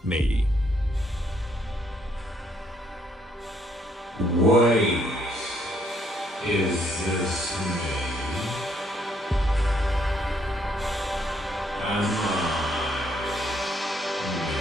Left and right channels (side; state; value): both; normal; correlation 0.70